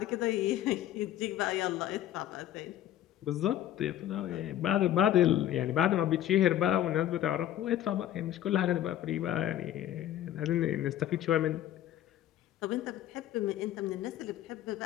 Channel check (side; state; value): right; quieter; 12.1 dB